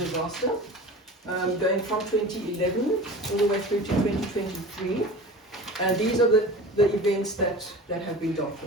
going from 2011 all the way through to 2023. And these are the events that have been dealt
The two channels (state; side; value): normal; both; correlation 0.36